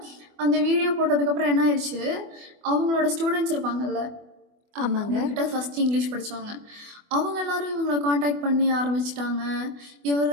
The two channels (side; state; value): left; late; 24 ms